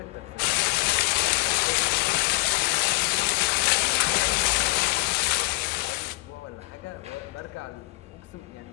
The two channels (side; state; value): right; quieter; 25.2 dB